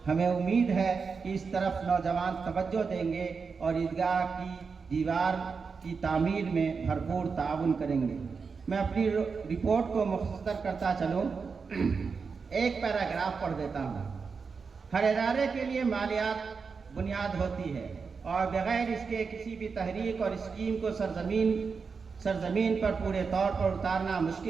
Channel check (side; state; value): left; quieter; 5.2 dB